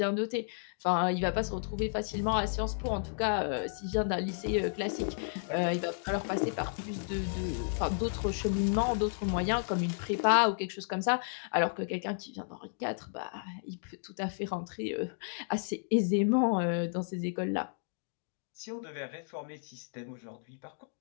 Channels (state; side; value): silent; right; digital silence